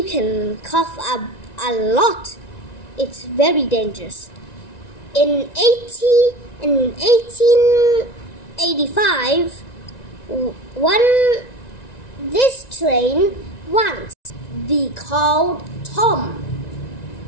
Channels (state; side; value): late; right; 1.9 ms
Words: can cough up a lot. It's very dangerous. In 1885, this train once be called Tom,